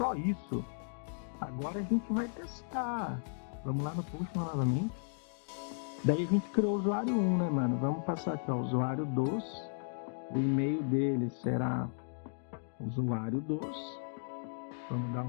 isso. Agora a gente vai testar. Vamos lá no post novamente. Daí a gente criou o usuário 1, né, mano? Vamos passar aqui, ó, usuário 2. O e-mail dele será usuário 2. Vamos dar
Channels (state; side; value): silent; right; digital silence